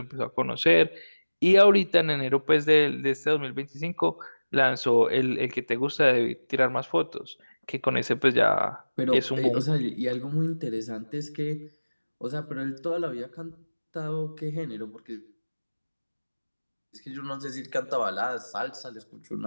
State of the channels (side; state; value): both; inverted; correlation -1.00